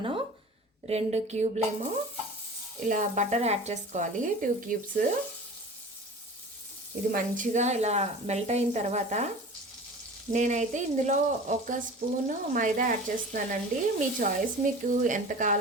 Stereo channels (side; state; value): both; normal; correlation 0.39